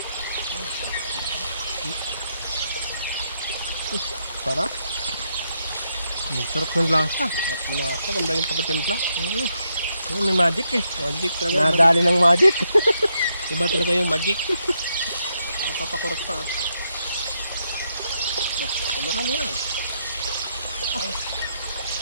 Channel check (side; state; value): both; inverted; correlation -0.79